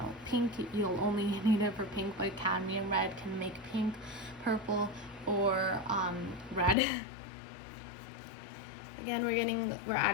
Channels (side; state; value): right; drops out; at 6.8 s